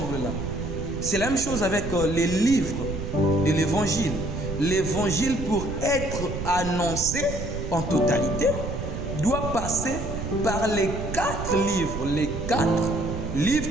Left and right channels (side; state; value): right; noise; rumble, 6 dB below the sound